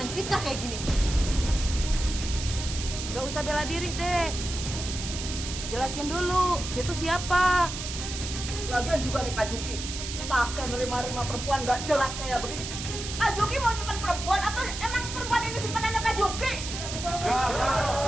fitnah kayak gini. Gak usah bela diri deh. Jelasin dulu, itu siapa? Lagian juga nih Pak Juki, pakai nerima-nerima perempuan nggak jelas kayak begini. Pak Juki mau nyimpan perempuan atau emang perempuan ini simpanannya Pak Juki? Betul.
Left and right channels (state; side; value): noise; right; hiss, 7 dB below the sound